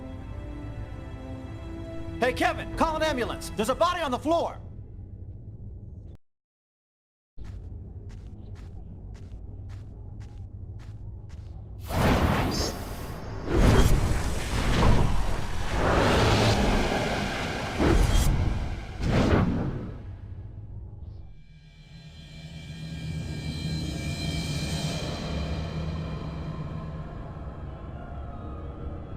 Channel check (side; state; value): both; identical; correlation 1.00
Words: Hey, Kevin, call an ambulance. There's a body on the floor.